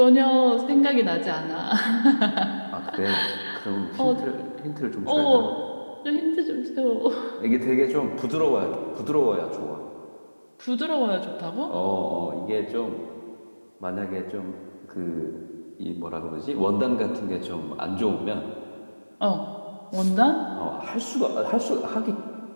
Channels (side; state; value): both; inverted; correlation -1.00